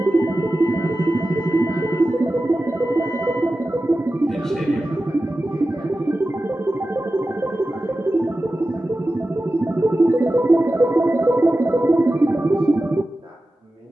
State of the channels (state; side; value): normal; both; correlation 0.94